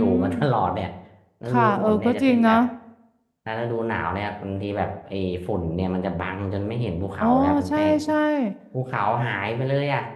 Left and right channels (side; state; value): both; identical; correlation 1.00